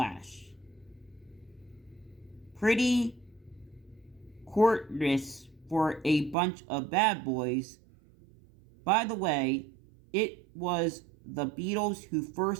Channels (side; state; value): left; drops out; at 6.4 s